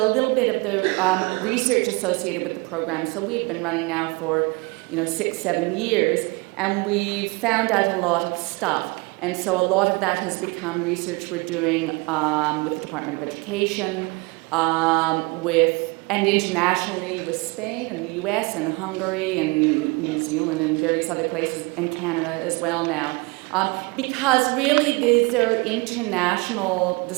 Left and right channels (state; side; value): quieter; left; 26.9 dB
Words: little bit of the research associated with the program. So we've been running now for 6-7 years, and we've found out a lot of stuff. And so a lot of that has become research we're doing with the Department of Education, and internationally with Spain and the US and Hungary and New Zealand and various other places, and Canada as well now. Because really these are international